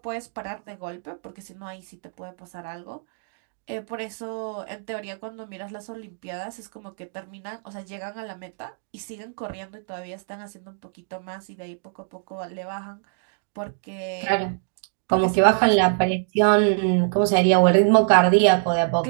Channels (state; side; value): silent; left; digital silence